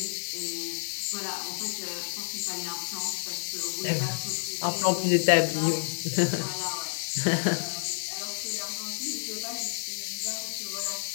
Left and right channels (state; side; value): silent; right; 58 dB below the other